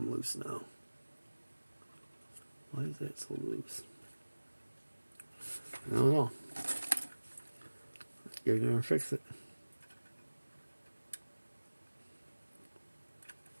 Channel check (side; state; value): both; inverted; correlation -1.00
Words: loose now. Why is that so loose? I don't know. Let's get in there and fix it.